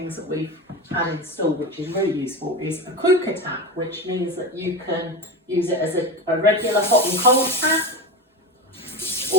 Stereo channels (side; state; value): both; normal; correlation 0.22